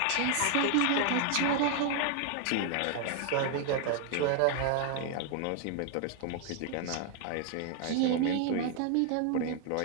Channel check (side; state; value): both; different; correlation 0.00